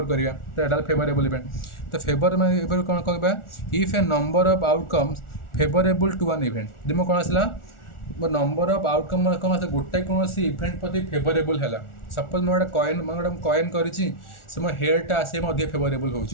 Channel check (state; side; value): late; right; 1.4 ms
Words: करवा तो यहाँ फेवरेबल इवेंट तो फेवर माने कौन कह if a number of outcomes favourable to one event जब कौन आसला नंबर ऑफ आउटकम कौन आसे गोटे कौन इवेंट प्रति फेवरेबल है सपोज मैं गोटे कॉइन मैं गोटे कॉइन करी से मो हेडटा आसे अधिक फेवरेबल